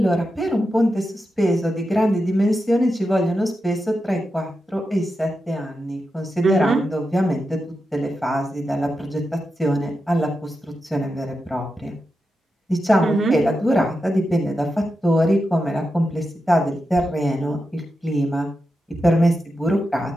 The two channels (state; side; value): normal; both; correlation 0.89